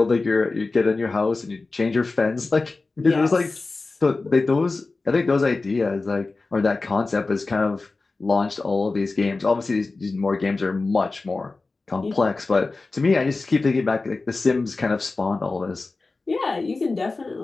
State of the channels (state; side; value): quieter; right; 3.6 dB